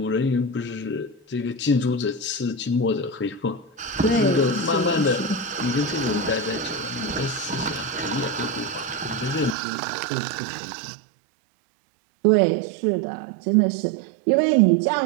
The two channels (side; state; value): left; drops out; at 9.6 s